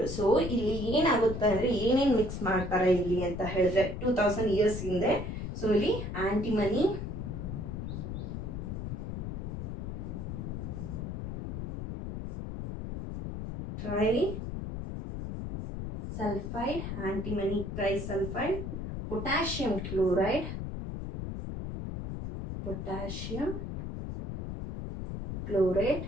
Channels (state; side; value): noise; left; rumble, 5 dB below the sound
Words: So ಇಲ್ಲಿ ಏನಾಗುತ್ತೆ ಅಂದರೆ ಏನೇನು mix ಮಾಡ್ತಾರೆ ಇಲ್ಲಿ ಅಂತ ಹೇಳಿದ್ರೆ 2000 years ಹಿಂದೆ. So ಇಲ್ಲಿ antimony, trisulphide, antimony trisulphide, potassium chloride,